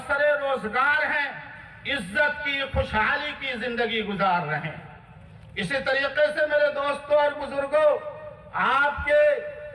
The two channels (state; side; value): identical; both; correlation 1.00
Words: روزگار ہیں، عزت کی خوشحالی کی زندگی گزار رہے ہیں۔ اسی طریقے سے میرے دوستوں اور بزرگوں، آپ کے